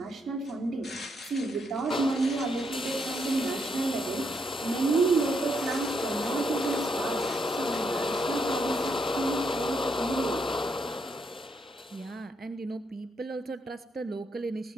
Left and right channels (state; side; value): normal; both; correlation 0.77